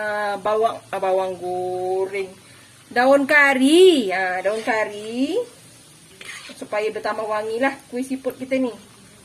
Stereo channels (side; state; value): both; identical; correlation 1.00